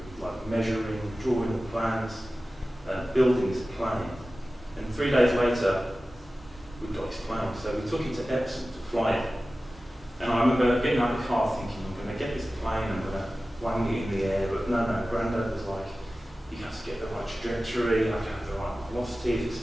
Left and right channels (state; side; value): normal; both; correlation 0.96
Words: like measuring, drawing the plans, building this plane. And 3 days later, we got this plane. So we took it to Epsom to fly it. And I remember getting out of the car thinking, I'm going to get this plane, I'm going to wang it in the air. But no, Grandad was like, you have to get the right trajectory, you have to have the right velocity. He